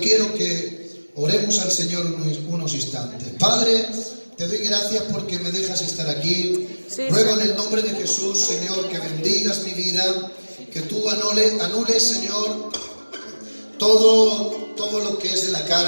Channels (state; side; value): inverted; both; correlation -1.00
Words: que oremos al Señor unos instantes. Padre, te doy gracias porque me dejas estar aquí. Ruego en el nombre de Jesús, Señor, que bendigas mi vida, que tú anules, Señor, todo lo que es de la